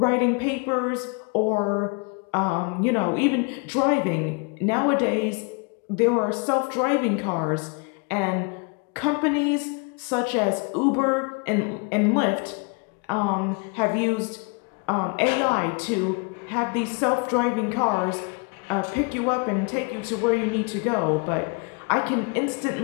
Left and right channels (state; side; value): quieter; right; 33.5 dB